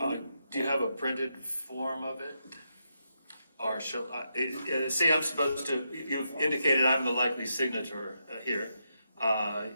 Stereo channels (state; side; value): inverted; both; correlation -0.83